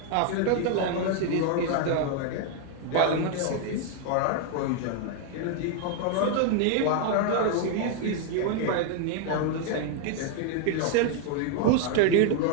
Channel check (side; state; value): both; different; correlation 0.00